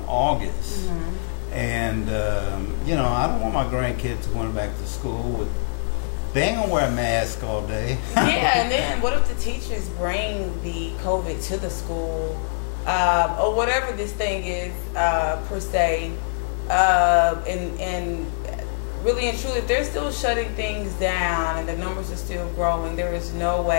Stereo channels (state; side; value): silent; right; 63 dB below the other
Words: August. And, you know, I don't want my grandkids going back to school. They ain't going to wear a mask all day. Yeah, and then what if the teachers bring the COVID to the school? Or whatever this thing is, per se. And really and truly, if they're still shutting things down and the numbers are still growing, there is no